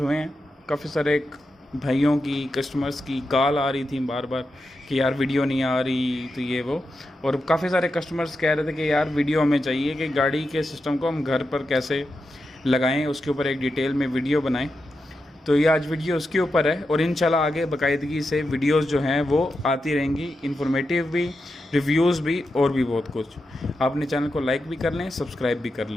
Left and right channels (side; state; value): both; normal; correlation 0.88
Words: हैं। काफ़ी सारे भाइयों की, कस्टमर्स की कॉल आ रही थी बार बार कि यार वीडियो नहीं आ रही, तो ये वो। और काफ़ी सारे कस्टमर्स कह रहे थे कि यार वीडियो हमें चाहिए कि गाड़ी के सिस्टम को हम घर पर कैसे लगाएँ, उसके ऊपर एक डिटेल में वीडियो बनाएँ। तो ये आज वीडियो उसके ऊपर है और इंशाल्लाह आगे बाकायदगी से वीडियोस जो हैं वो आती रहेंगी, इन्फॉर्मेटिव भी, रिव्यूज़ भी और भी बहुत कुछ। आपने चैनल को लाइक भी कर लें, सब्सक्राइब भी कर